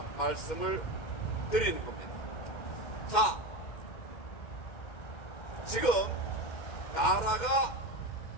말씀을 드리는 겁니다. 자, 지금 나라가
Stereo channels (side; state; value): right; late; 2.1 ms